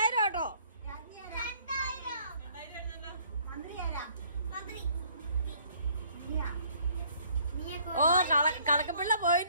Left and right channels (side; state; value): both; inverted; correlation -0.60